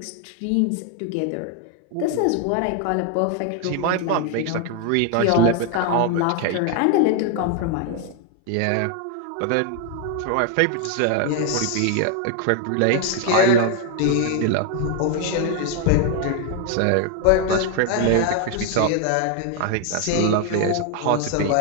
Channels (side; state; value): both; different; correlation 0.01